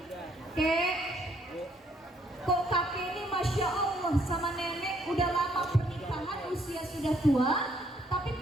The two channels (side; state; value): both; normal; correlation 0.67